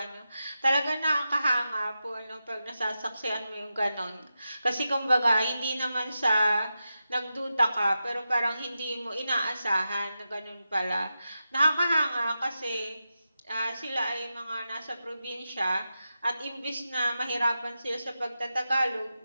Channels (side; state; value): both; inverted; correlation -0.91